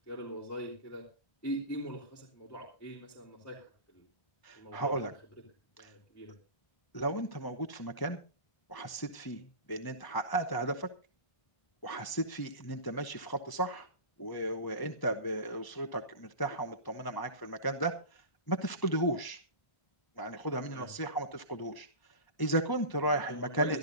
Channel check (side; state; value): right; late; 1.0 ms